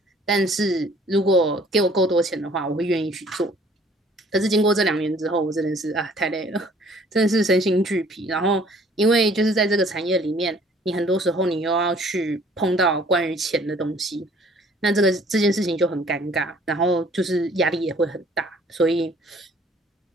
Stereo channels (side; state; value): both; normal; correlation 0.56